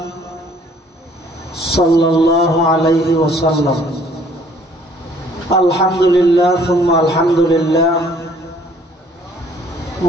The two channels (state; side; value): normal; both; correlation 0.59